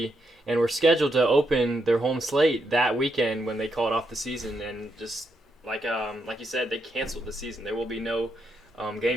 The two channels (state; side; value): normal; both; correlation 0.80